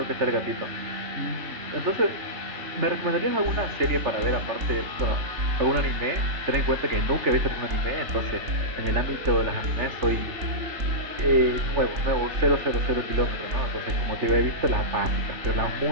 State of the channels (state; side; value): late; left; 3.4 ms